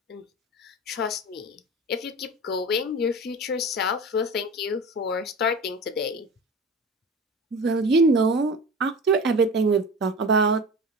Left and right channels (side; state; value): both; normal; correlation 0.33